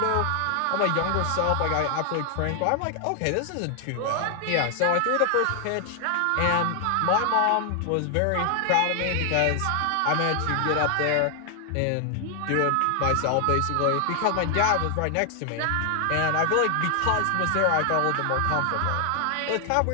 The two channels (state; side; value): different; both; correlation 0.00